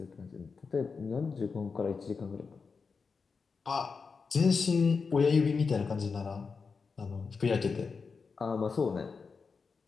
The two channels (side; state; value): right; quieter; 5.0 dB